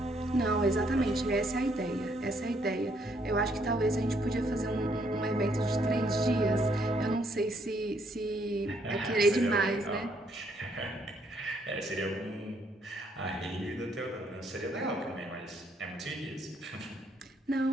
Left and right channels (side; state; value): both; normal; correlation 0.70